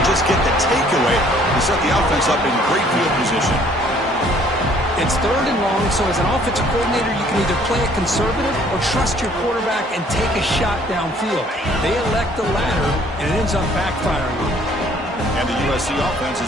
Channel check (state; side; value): normal; both; correlation 0.59